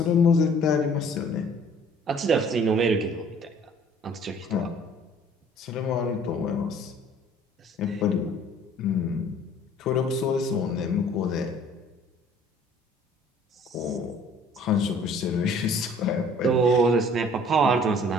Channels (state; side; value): normal; both; correlation 0.54